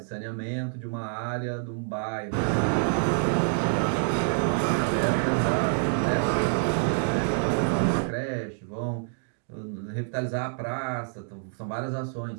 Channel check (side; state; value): left; silent; 60 dB below the other